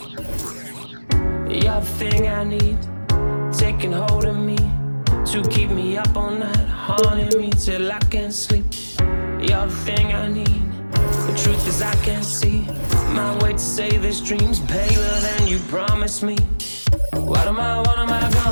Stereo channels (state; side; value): inverted; both; correlation -1.00